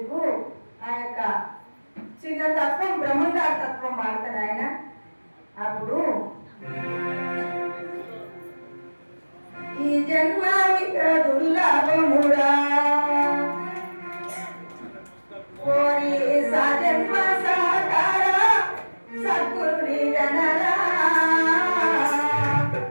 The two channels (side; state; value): both; inverted; correlation -1.00